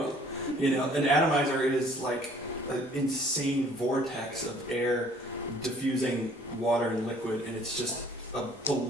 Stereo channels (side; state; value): both; normal; correlation 0.56